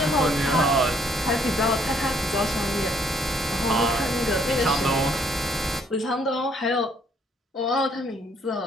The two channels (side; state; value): both; normal; correlation 0.65